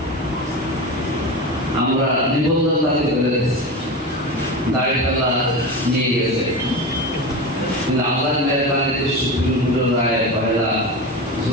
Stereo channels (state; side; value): normal; both; correlation 0.25